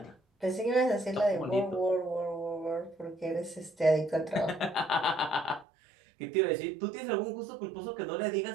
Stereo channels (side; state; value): left; drops out; at 5.7 s